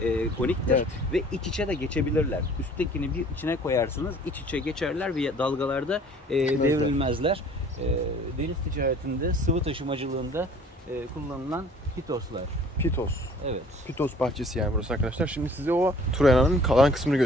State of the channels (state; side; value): normal; both; correlation 0.52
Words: koniktir Evet. ve iç içe de geçebilirler. Üsttekini bir içine koyarsınız, iç içe geçerler ve dalgalarda devrilmezler. Deniz ticaretinde, sıvı taşımacılığında kullanılan pitoslar. Pitos. Evet. Pitos bahçesi yani burası arkadaşlar. Şimdi size o Troya'nın kalan kısmını